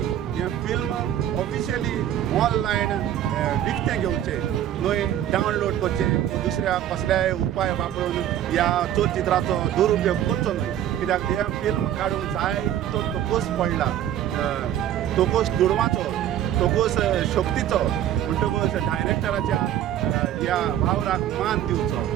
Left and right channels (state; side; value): quieter; left; 11.4 dB